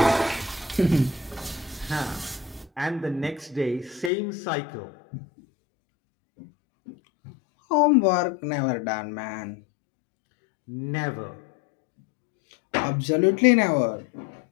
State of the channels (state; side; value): drops out; right; at 4.1 s